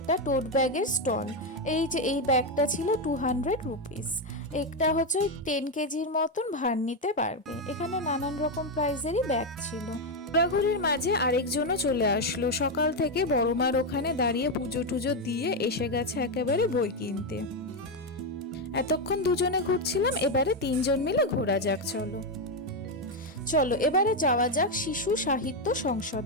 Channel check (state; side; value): normal; both; correlation 0.06